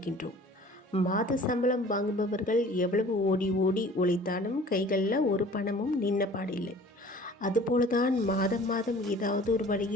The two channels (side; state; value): both; normal; correlation 0.47